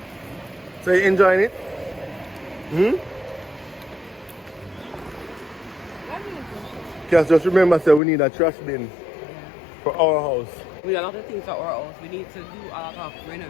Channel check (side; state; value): right; drops out; at 8.0 s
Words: So you enjoying it? Because just remember, say we need a trash bin for our house. We have a lot of things for our house. We need to do a lot of